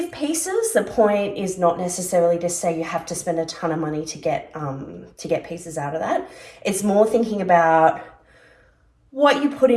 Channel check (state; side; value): identical; both; correlation 1.00